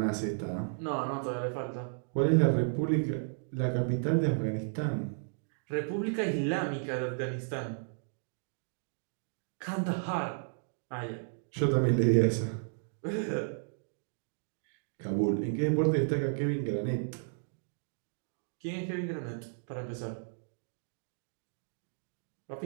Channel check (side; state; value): left; silent; digital silence